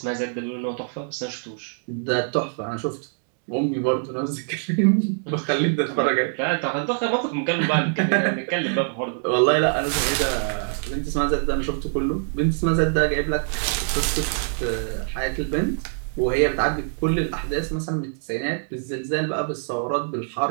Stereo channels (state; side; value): silent; left; digital silence